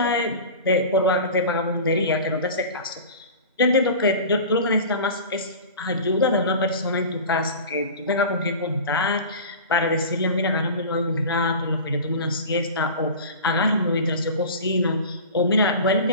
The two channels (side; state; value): both; inverted; correlation -0.35